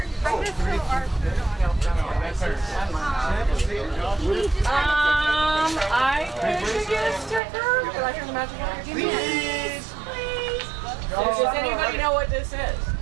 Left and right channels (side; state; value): left; drops out; at 7.4 s